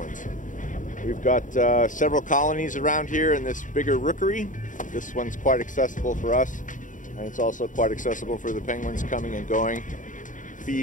We've got several colonies around here in this bigger rookery. This one's quite accessible for us, and it's also quite accessible for the penguins coming and going,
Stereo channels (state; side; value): late; right; 0.37 ms